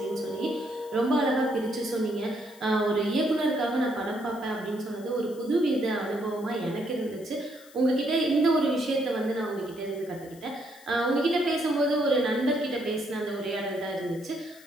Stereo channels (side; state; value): left; noise; hiss, 23 dB below the sound